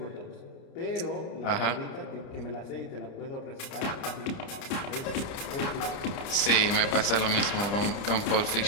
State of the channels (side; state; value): right; late; 30 ms